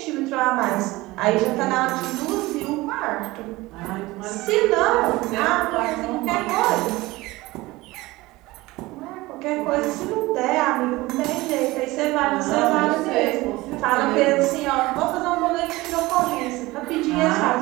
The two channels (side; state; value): left; quieter; 20.1 dB